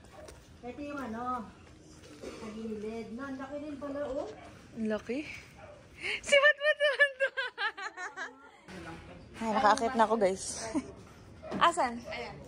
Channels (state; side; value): identical; both; correlation 1.00